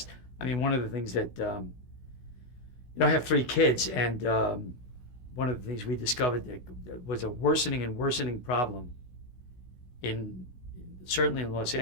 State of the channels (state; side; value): late; right; 16 ms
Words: I mean, one of the things that I have 3 kids, and one of the things we discovered that was a worsening and worsening problem in certainly in Los